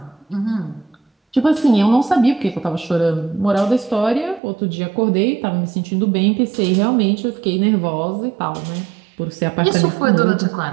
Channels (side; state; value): left; drops out; at 4.4 s